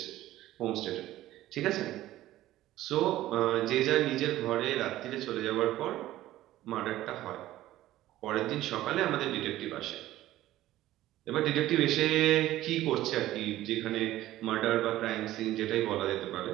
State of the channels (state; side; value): quieter; left; 14.9 dB